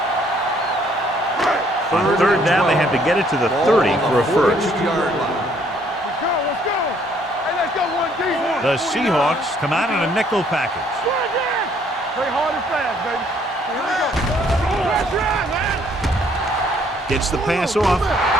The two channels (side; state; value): both; normal; correlation 0.64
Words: On third down, they have to get it to the 30 for a first. Let's go. Hey, let's go, 1D. The Seahawks come out in a nickel package. Play hard and fast, baby. Here we go. Let's run, man. Gets the pass off.